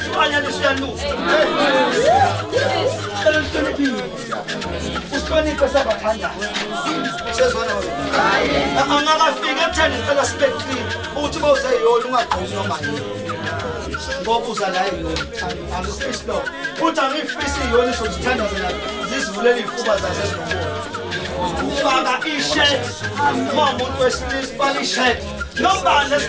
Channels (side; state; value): both; identical; correlation 1.00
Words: uyanuka usihloniphe sabathandaza sezona angakafika ekutheni ngicela sibe clean ukuthi bawuzeyiyona ungagqozi noma yini ngoba uza la angifisi lo futhi angifisi iyona isozithandazela zizivulela iy'fuba zazezinomona ufaka i-shirt uma umuntu wesilisa ufaka i-shirt nobani